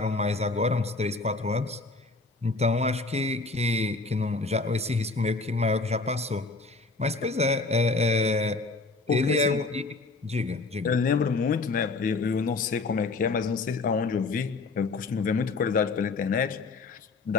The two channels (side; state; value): right; quieter; 3.7 dB